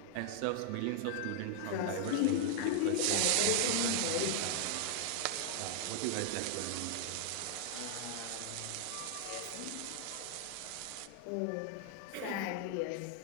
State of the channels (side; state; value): both; different; correlation 0.00